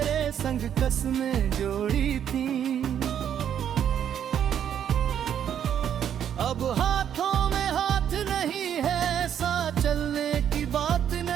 संग कसमें जोड़ी थी। अब हाथों में हाथ नहीं है, साथ चलने की बात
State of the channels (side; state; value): left; quieter; 9.3 dB